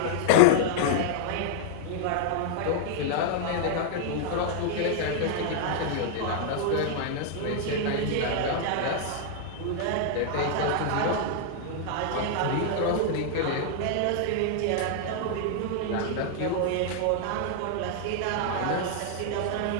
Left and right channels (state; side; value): different; both; correlation -0.01